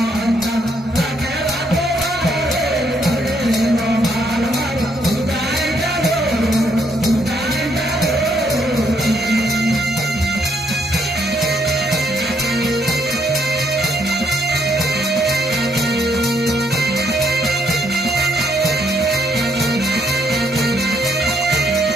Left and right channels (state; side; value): normal; both; correlation 0.72